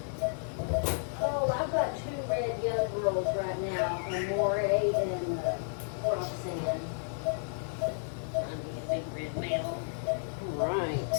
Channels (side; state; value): right; silent; digital silence